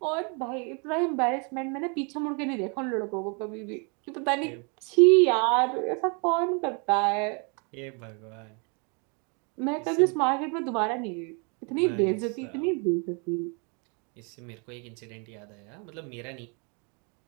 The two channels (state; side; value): quieter; left; 34.8 dB